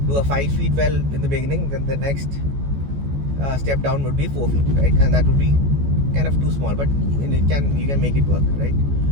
do a 5 feet well in the beginning, then the next step down would be 4 feet, right? And that would be kind of too small, but you can make it work, right?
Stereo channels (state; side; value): late; left; 14 ms